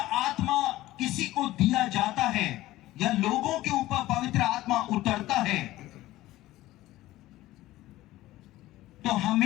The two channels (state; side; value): quieter; right; 16.4 dB